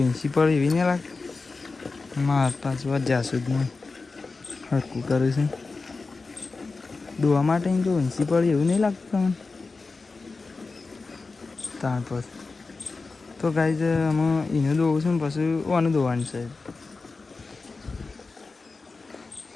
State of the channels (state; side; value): quieter; right; 3.9 dB